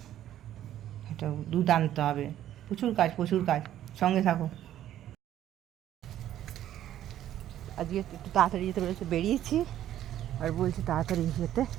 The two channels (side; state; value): left; quieter; 12.0 dB